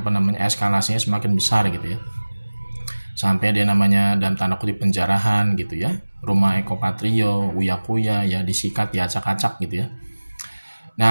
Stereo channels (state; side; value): inverted; both; correlation -1.00